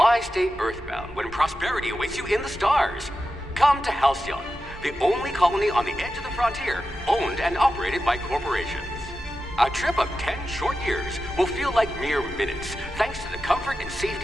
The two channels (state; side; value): normal; both; correlation 0.91